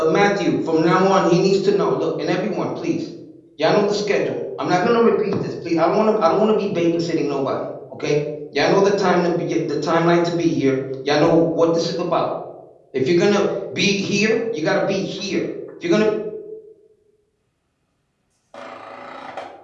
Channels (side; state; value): both; identical; correlation 1.00